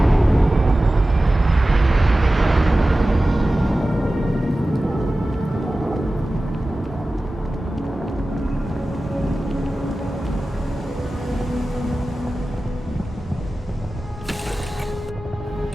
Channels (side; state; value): both; normal; correlation 0.96